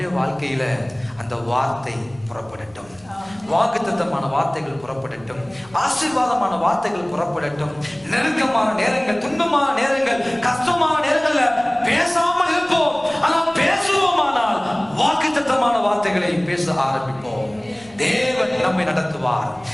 வாழ்க்கையில அந்த வார்த்தை புறப்படட்டும், வாக்குத்தத்தமான வார்த்தைகள் புறப்படட்டும், ஆசீர்வாதமான வார்த்தைகள் புறப்படட்டும். நெருக்கமான நேரங்கள், துன்பமான நேரங்கள், கஷ்டமான நேரங்கள்ல பேசாமல் இருப்போம். ஆனால் பேசுவோமானால் வாக்குத்தத்தமான வார்த்தைகளை பேச ஆரம்பிப்போம். தேவன் நம்மை நடத்துவார்.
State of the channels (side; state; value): left; noise; rumble, 27 dB below the sound